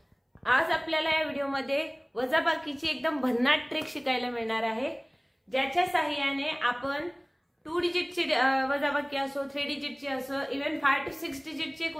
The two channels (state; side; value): identical; both; correlation 1.00